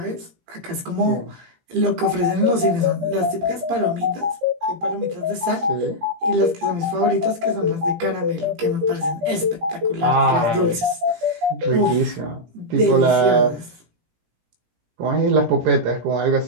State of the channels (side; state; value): left; late; 17 ms